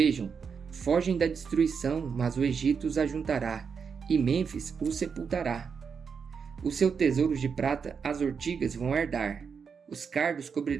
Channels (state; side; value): quieter; left; 6.1 dB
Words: fogem da destruição, mas o Egito os ajuntará, e Mênfis os sepultará. Os seus tesouros de prata as ortigas vão herdar, os cardos